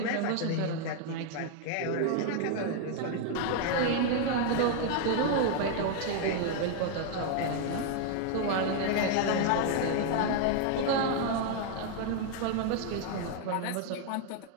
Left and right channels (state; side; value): different; both; correlation 0.00